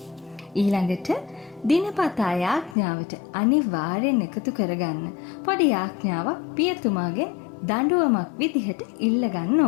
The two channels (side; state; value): right; drops out; at 2.8 s